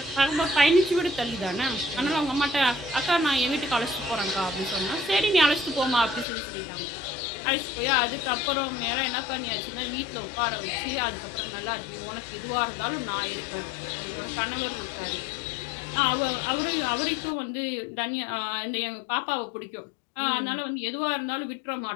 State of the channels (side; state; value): right; drops out; at 6.2 s